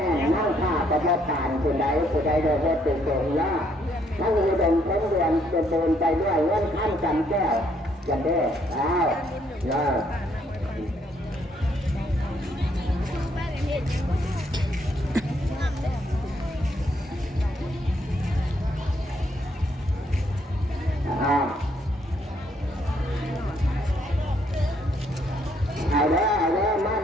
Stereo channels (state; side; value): normal; both; correlation 0.70